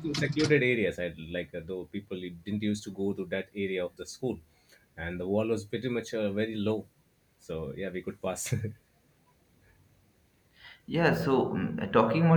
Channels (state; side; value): identical; both; correlation 1.00